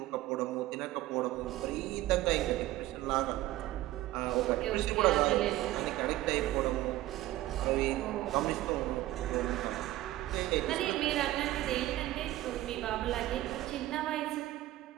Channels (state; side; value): quieter; left; 16.0 dB